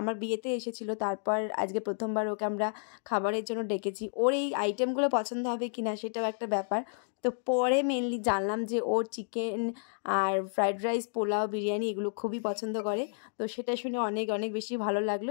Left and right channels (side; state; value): right; silent; digital silence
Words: বিয়েতে এসেছিল, তারপর আজকে প্রথমবার ওকে আমরা খাবারের জন্য ডেকেছি। ওর এই আইটেমগুলো পছন্দ হবে কি না সেটাও একটা ব্যাপার। তো পরে মেনলি জানলাম যে ওর চিকেন আর ফ্রাইড রাইস, পোলাও, বিরিয়ানি এগুলো খুবই পছন্দ করে। তো সেটা শুনে অনেক অনেক বেশি ভালো